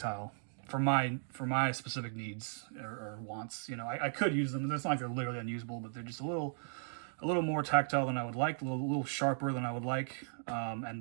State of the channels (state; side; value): silent; left; digital silence